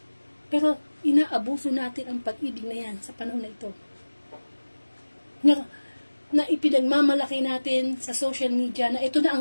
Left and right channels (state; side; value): inverted; both; correlation -1.00